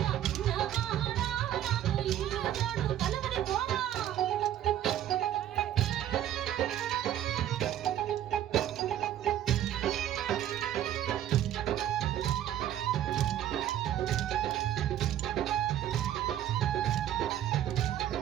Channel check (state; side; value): quieter; left; 11.5 dB